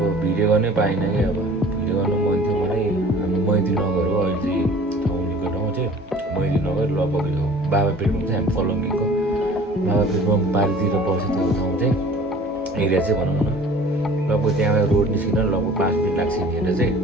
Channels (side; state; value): both; normal; correlation 0.47